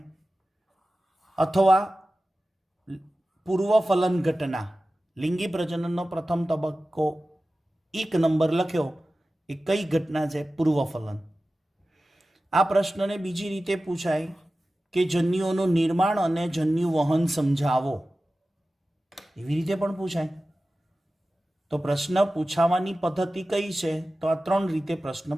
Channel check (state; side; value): normal; both; correlation 0.95